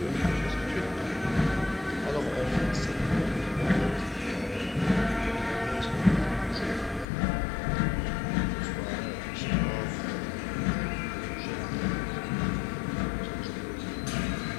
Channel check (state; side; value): drops out; right; at 7.1 s